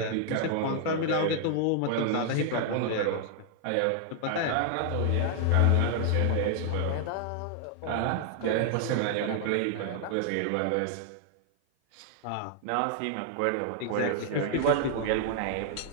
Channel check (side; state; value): both; different; correlation 0.00